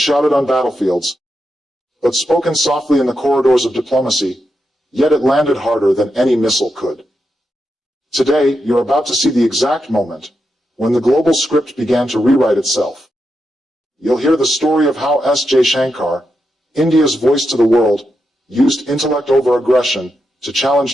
on battlefields, but spoken softly in the corridors of diplomacy, yet it landed harder than any missile could. Today, you're about to see the exact moment when the global script began to rewrite itself. You'll hear the story of how Jaishankar, India's voice to the world, used intellect over aggression to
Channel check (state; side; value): normal; both; correlation 0.86